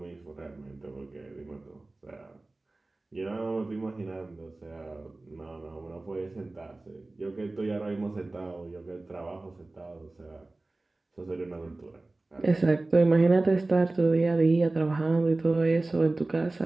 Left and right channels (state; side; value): quieter; left; 3.0 dB